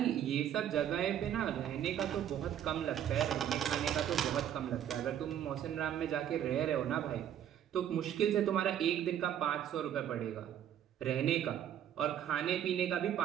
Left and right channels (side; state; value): left; quieter; 10.1 dB